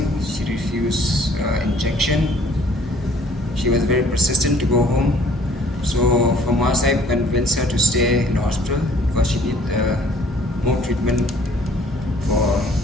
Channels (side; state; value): both; normal; correlation 0.57